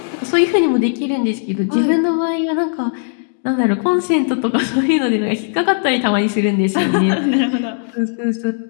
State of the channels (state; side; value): silent; right; digital silence